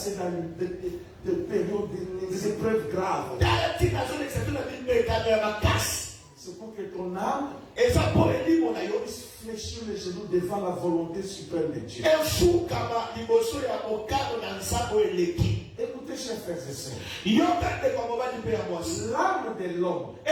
dans des périodes, des épreuves graves. C'est pour que ton âme puisse fléchir les genoux devant la volonté suprême de Dieu. Écoutez, chers frères et sœurs, l'âme de l'homme,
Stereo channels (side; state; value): both; identical; correlation 1.00